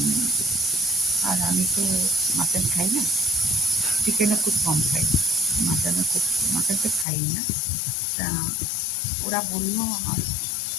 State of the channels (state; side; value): drops out; right; at 7.1 s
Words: আর আমি তো মাটন খাই না, চিকেনও খুব কম খাই, মাটন তো খাই না। তা ওরা বললো, আমার